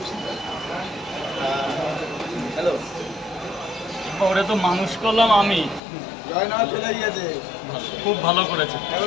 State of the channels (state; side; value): drops out; right; at 5.8 s